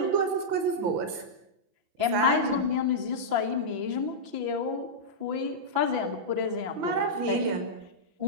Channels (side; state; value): left; late; 5.9 ms